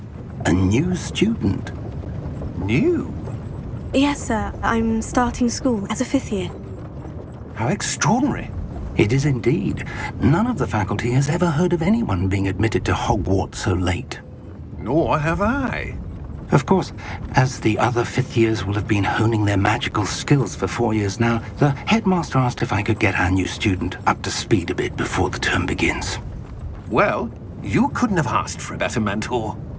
A new student. New? Yes, sir. I'm starting school as a 5th year. How extraordinary. It is indeed. None of the faculty has ever heard of anyone being admitted to Hogwarts so late. Nor have I. Of course, as the other 5th years will have been honing their magical skills for 4 years now, the headmaster asked if I could get our new student up to speed a bit before the term begins. Well, you couldn't have asked for a better mentor.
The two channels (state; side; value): identical; both; correlation 1.00